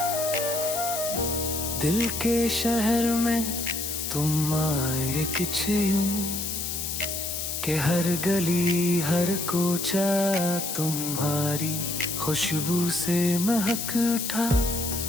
दिल के शहर में तुम आए कुछ यूं कि हर गली हर कोचा तुम्हारी खुशबू से महक उठा।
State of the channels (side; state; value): left; noise; hiss, 4 dB below the sound